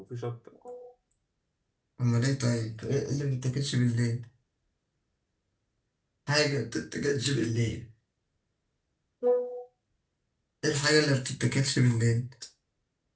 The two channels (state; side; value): identical; both; correlation 1.00